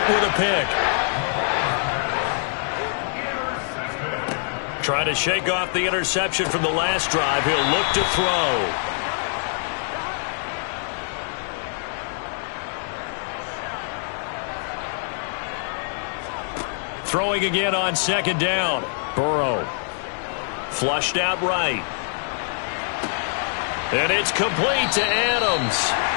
with a pick. Trying to shake off the interception from the last drive. He'll look to throw. Throwing again on 2nd down. Burrow. Flushed out right. And it's complete to Adams.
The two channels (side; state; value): right; silent; digital silence